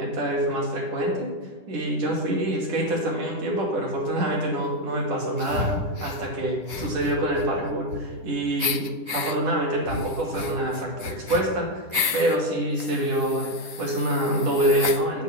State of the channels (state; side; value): late; left; 10 ms